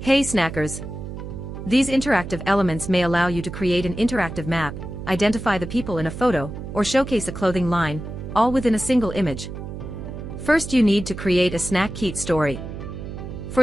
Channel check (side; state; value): right; noise; hum, 9 dB below the sound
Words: Hey Snackers! These interactive elements may allow you to create an interactive map, identify the people in a photo, or showcase a clothing line, all within a single image. First, you need to create a Snackeet story.